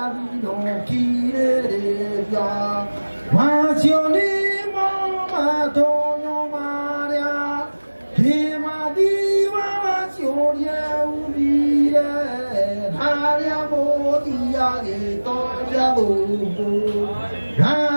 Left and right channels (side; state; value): both; inverted; correlation -1.00